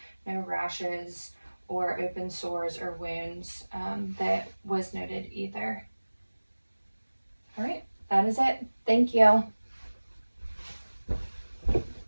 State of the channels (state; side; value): inverted; both; correlation -1.00